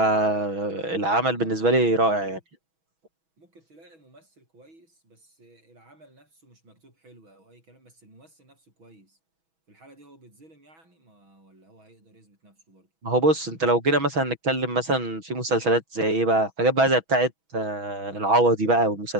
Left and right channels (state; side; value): late; left; 6.2 ms